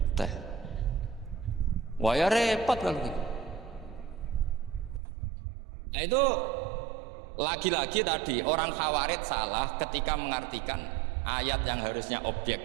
teh. Wah ya repot kalau gitu. Nah itu lagi-lagi tadi orang Khawarij salah ketika mengartikan ayat yang harusnya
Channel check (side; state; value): left; drops out; at 5.0 s